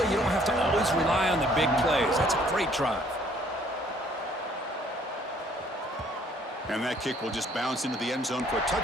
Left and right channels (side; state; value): both; normal; correlation 0.61